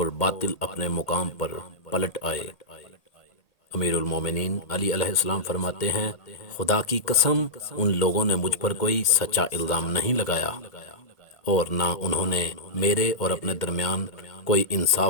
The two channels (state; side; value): late; right; 1.8 ms